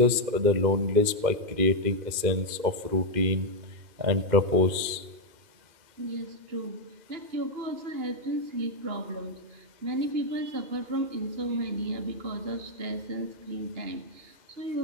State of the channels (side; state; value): left; late; 2.1 ms